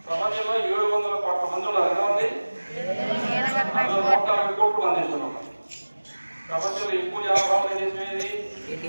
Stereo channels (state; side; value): inverted; both; correlation -1.00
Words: ప్రపంచంలో 700 కోట్ల మంది ఉన్నారు. ఎంతమంది? 140 కోట్లు మంది ఇస్తున్నాం. ప్రపంచంలో ఎక్కువ జనాభా ఉన్న దేశం ఏది?